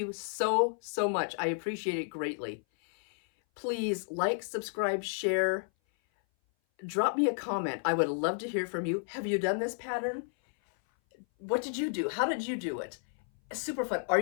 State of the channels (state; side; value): silent; right; 56 dB below the other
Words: so, so much. I appreciate it greatly. Please like, subscribe, share, drop me a comment. I would love to hear from you. Have you done this pattern? What did you do? How did you do it? Super fun.